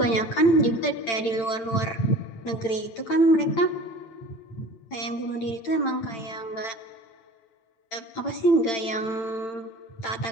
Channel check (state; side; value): late; right; 8.9 ms